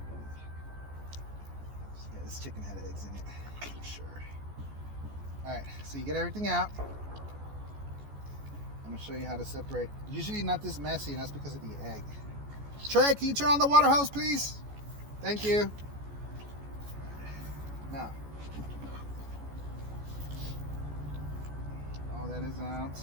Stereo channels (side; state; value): left; late; 14 ms